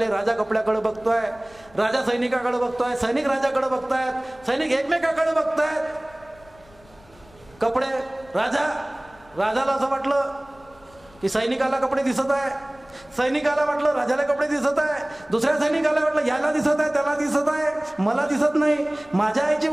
राजा कपड्याकडे बघतोय, राजा सैनिकाकडे बघतोय, सैनिक राजाकडे बघतायत, सैनिक एकमेकाकडे बघतायत. कपडे राजाला असं वाटलं की सैनिकाला कपडे दिसत आहे, सैनिकाला वाटलं राजाला कपडे दिसत आहे, दुसऱ्या सैनिकाला वाटलं याला दिसत आहे त्याला दिसत आहे, मला दिसत नाही, माझ्या आईची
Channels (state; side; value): noise; left; rumble, 27 dB below the sound